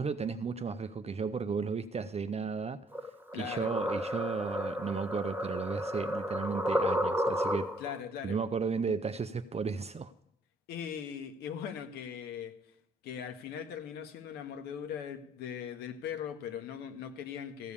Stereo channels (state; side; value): normal; both; correlation 0.64